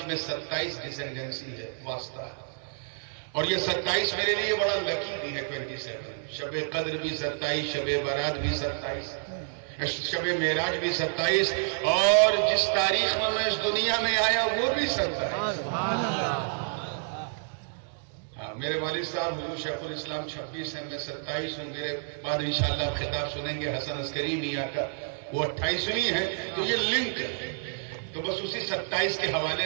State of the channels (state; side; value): silent; left; digital silence